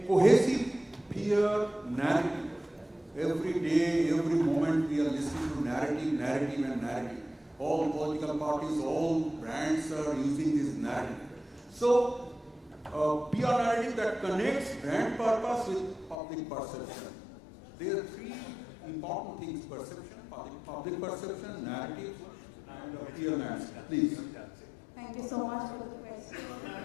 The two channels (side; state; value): right; drops out; at 16.2 s